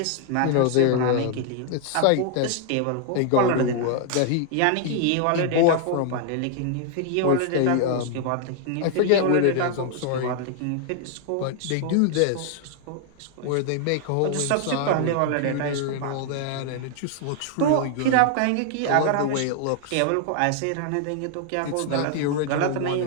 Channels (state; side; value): different; both; correlation 0.00